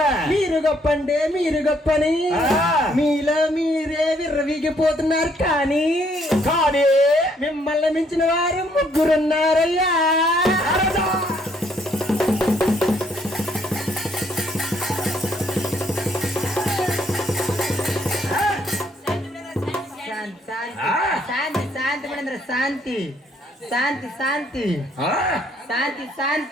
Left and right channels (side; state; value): both; normal; correlation 0.68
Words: మీరు గొప్పంటే మీరు గొప్పని మీలో మీరే విర్రవీగిపోతున్నారు కానీ మిమ్మల్ని మించిన వారు ముగ్గురున్నారయ్యా శాంతి శాంతి మునేంద్ర శాంతి శాంతి శాంతి శాంతి